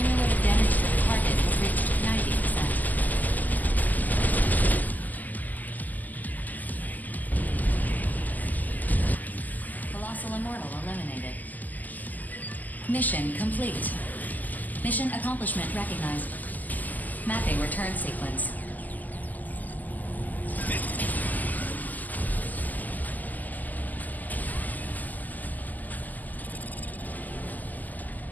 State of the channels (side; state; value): right; late; 0.082 ms